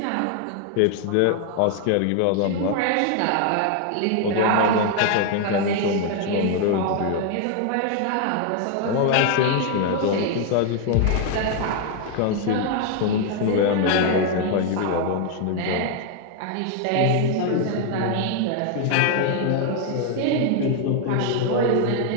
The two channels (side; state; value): both; different; correlation 0.00